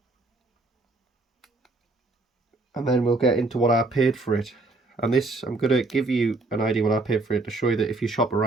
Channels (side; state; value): left; quieter; 3.2 dB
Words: And then we'll get into what I paid for it. And this, I'm going to give you an idea what I paid for it to show you that if you shop